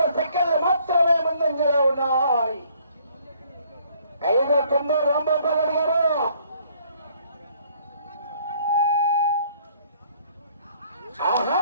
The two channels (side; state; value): both; inverted; correlation -0.62